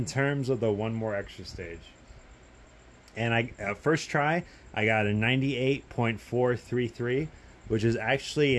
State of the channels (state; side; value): identical; both; correlation 1.00